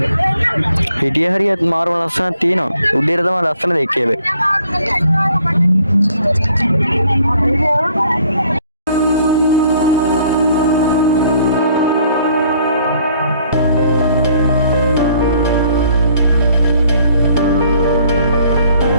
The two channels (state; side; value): inverted; both; correlation -0.63